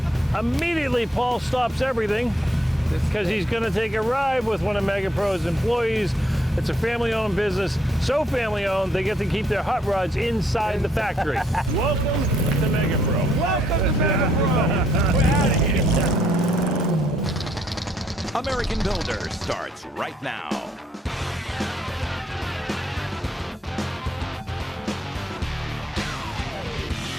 immediately Paul stops everything because he's going to take a ride with one of MEGAPRO's employees. It's a family-owned business, so family-owned they get to keep their hot rods inside the factory. Welcome to MEGAPRO. Welcome to MEGAPRO. We're out of here. American Builder starts right now.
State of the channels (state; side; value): normal; both; correlation 0.70